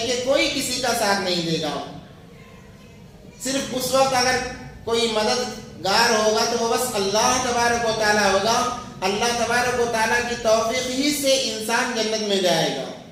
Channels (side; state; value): both; identical; correlation 1.00